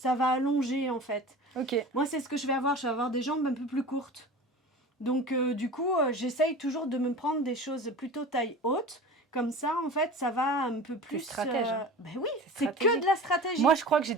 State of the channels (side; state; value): both; normal; correlation 0.35